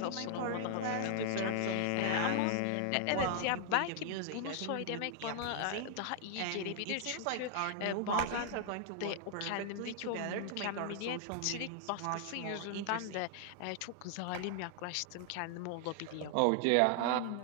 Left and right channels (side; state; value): both; different; correlation 0.00